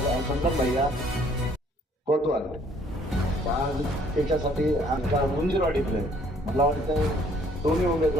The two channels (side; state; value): both; normal; correlation 0.61